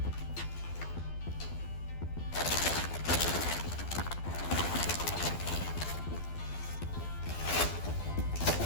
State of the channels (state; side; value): late; right; 12 ms